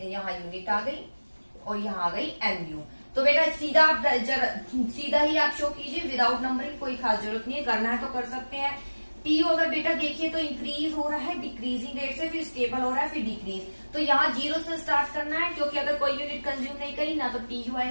यहाँ यूनिट आ गई और यहाँ आ गई MU। तो बेटा सीधा आप सीधा ही आप शो कीजिए, विदाउट नंबरिंग, कोई खास जरूरत नहीं है, करना है तो कर सकते हैं। TU अगर बेटा देखिए तो इंक्रीज हो रहा है डिक्रीजिंग रेट से, फिर स्टेबल हो रहा है, फिर डिक्रीज। तो यहाँ 0 से स्टार्ट करना है, क्योंकि अगर कोई यूनिट कंज्यूम नहीं करी ना तो TU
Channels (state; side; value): inverted; both; correlation -1.00